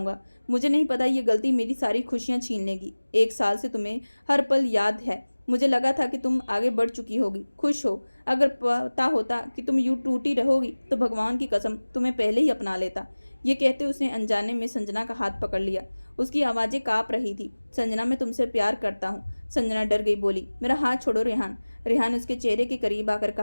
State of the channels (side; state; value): both; inverted; correlation -1.00